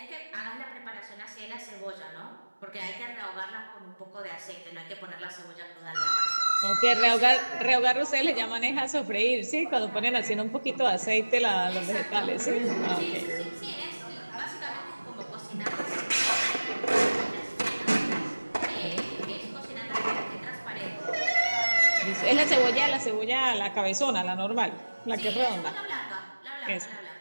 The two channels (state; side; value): inverted; both; correlation -1.00